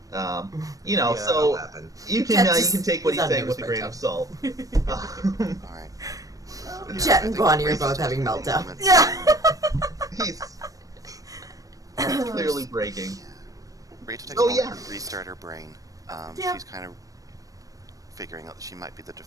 You know, Yeah, so that'll happen. you can take what he's he's on saying with a newsprint grain of job. salt. Alright. Jet and Bonnie are both having meltdown. Yeah. He's clearly breaking. Rachel takes Oh, a moment yeah. to restart her brain. Yeah. She's kind of figuring out that she might be the de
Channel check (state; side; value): late; left; 0.17 ms